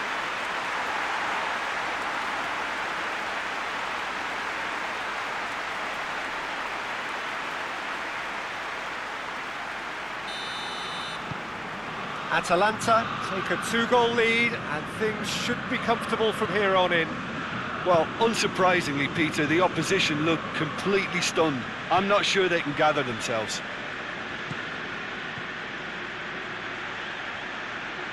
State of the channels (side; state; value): left; noise; hum, 28 dB below the sound